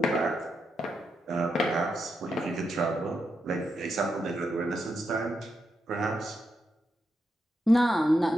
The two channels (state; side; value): normal; both; correlation 0.84